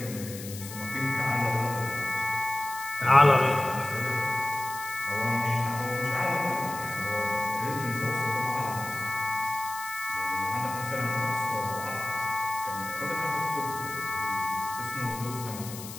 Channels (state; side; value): noise; left; hiss, 12 dB below the sound